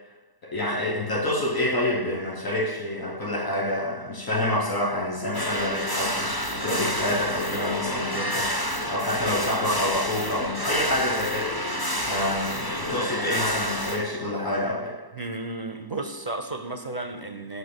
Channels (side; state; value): right; late; 1.0 ms